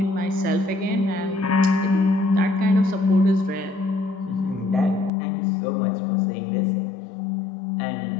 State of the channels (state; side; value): drops out; right; at 5.1 s